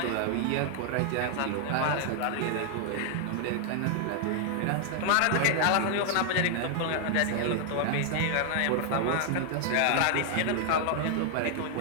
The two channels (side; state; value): both; different; correlation 0.00